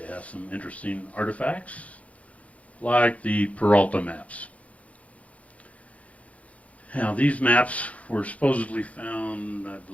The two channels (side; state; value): right; late; 0.066 ms